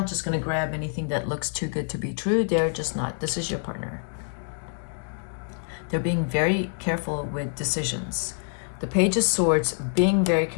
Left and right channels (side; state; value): right; silent; digital silence